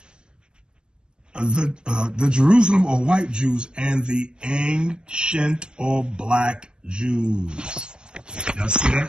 The Jerusalem or white Jews and the ancient or black Jews. Y'all see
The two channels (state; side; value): late; left; 0.052 ms